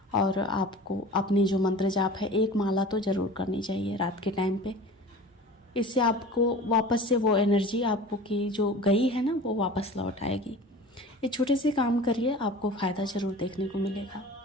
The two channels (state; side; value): normal; both; correlation 0.39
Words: और आपको अपनी जो मंत्र जाप है, एक माला तो ज़रूर करनी चाहिए रात के टाइम पे। इससे आपको वापस से वो एनर्जी आपको की जो गई है ना, वो वापस लौट आएगी। ये छोटे से काम करिए, आपको फ़ायदा ज़रूर देखने को मिलेगा।